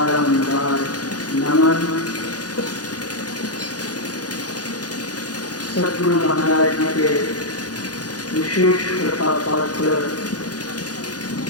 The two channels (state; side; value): late; right; 0.69 ms